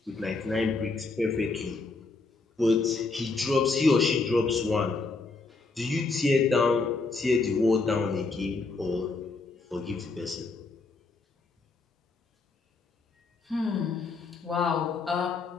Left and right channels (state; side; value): quieter; right; 3.8 dB